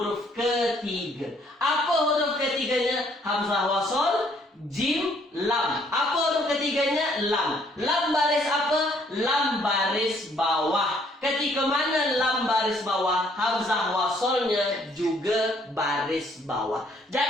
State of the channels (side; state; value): both; normal; correlation 0.65